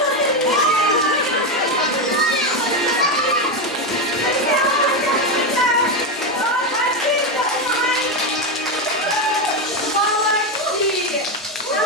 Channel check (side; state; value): both; normal; correlation 0.10